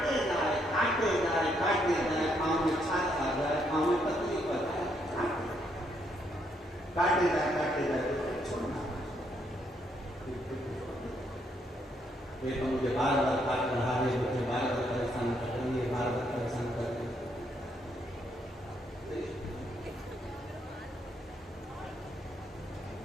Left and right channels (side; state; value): both; normal; correlation 0.74